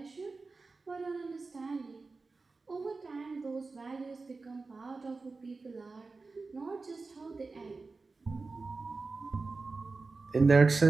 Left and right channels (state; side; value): quieter; left; 3.9 dB